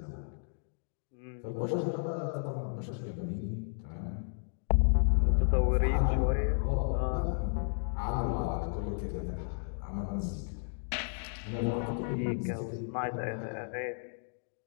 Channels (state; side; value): silent; right; digital silence